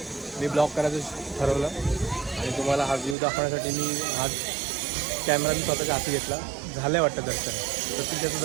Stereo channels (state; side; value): drops out; left; at 3.2 s